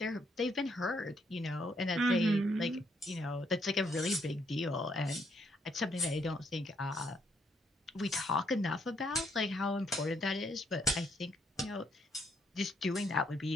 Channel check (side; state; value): both; normal; correlation 0.73